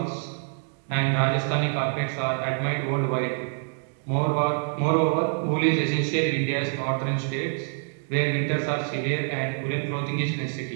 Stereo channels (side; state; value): left; silent; 61 dB below the other